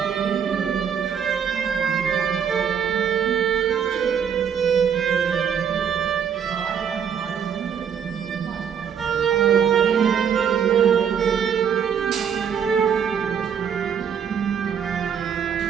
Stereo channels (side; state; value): left; quieter; 7.8 dB